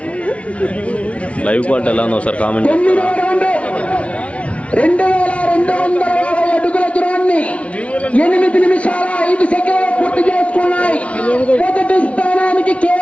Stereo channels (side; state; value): right; late; 0.063 ms